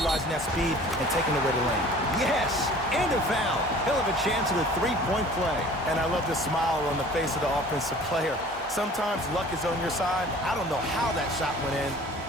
that speed and taking away the lane. Yes, and a foul. He'll have a chance at a three-point play. And I love the smile on the face of the offensive player. Sometimes luck is on your side. I don't know how that shot went in,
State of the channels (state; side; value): normal; both; correlation 0.47